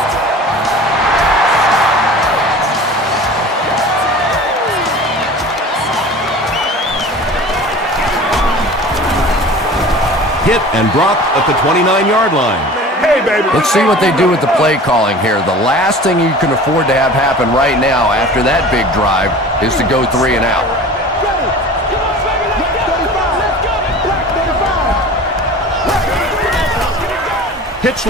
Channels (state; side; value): normal; both; correlation 0.40